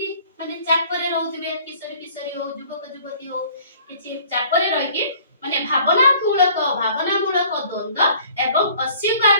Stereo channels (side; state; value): both; inverted; correlation -0.54